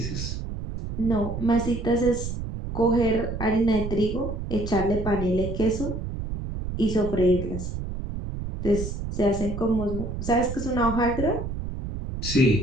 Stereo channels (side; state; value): right; noise; rumble, 5 dB below the sound